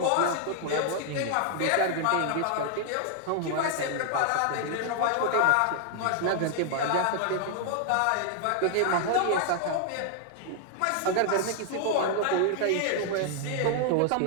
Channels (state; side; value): different; both; correlation 0.00